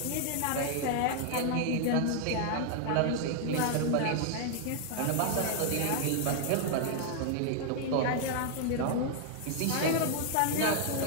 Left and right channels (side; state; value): both; different; correlation 0.00